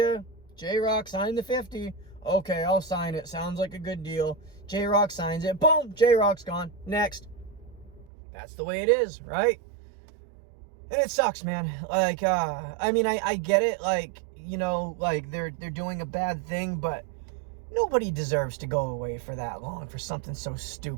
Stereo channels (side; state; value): left; drops out; at 8.1 s